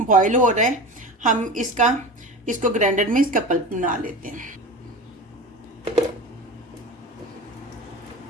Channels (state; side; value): normal; both; correlation 0.31